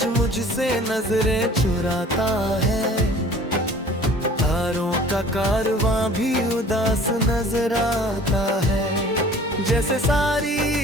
मुझसे नजरें चुराता है, तारों का कारवां भी उदास नजर आता है। जैसे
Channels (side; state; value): both; normal; correlation 0.49